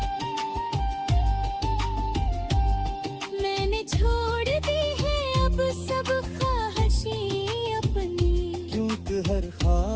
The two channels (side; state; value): both; identical; correlation 1.00